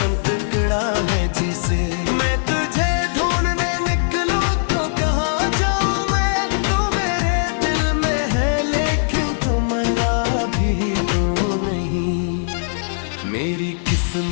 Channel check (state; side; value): silent; right; digital silence